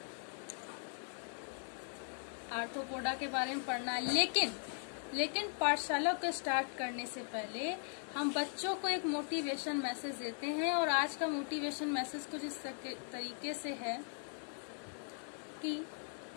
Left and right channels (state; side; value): silent; right; 52 dB below the other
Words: आर्थ्रोपोडा के बारे में पढ़ना है, लेकिन पाठशाला को स्टार्ट करने से पहले हम बच्चों को एक मोटिवेशन मैसेज देते हैं और आज का मोटिवेशन मैसेज कुछ इस तरीके से है कि